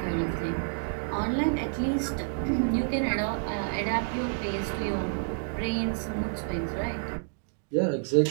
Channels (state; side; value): silent; left; digital silence